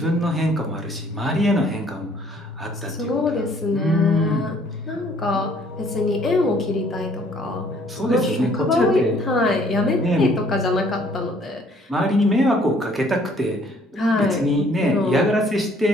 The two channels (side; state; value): both; normal; correlation 0.60